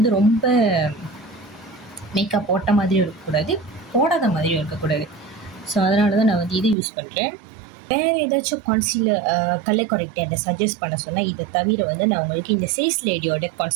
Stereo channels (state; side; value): drops out; left; at 6.8 s